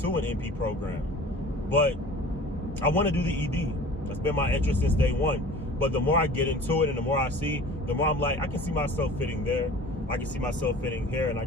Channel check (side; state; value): both; normal; correlation 0.43